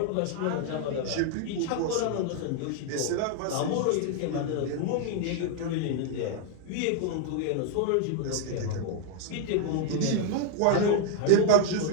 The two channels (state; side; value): different; both; correlation 0.00